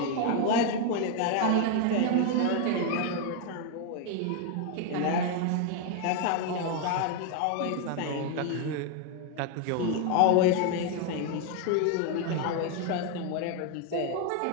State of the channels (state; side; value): different; both; correlation 0.01